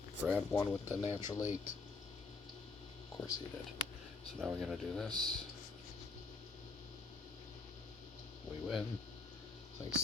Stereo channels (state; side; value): quieter; right; 4.2 dB